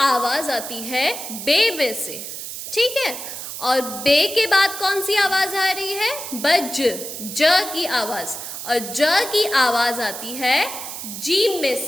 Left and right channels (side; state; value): right; noise; hiss, 8 dB below the sound